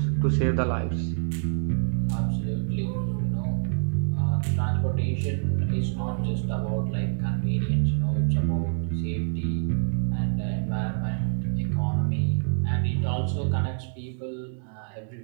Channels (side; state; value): left; silent; digital silence